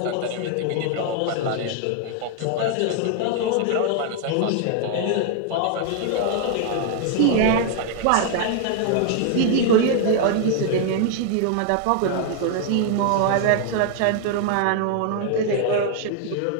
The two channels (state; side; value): different; both; correlation 0.00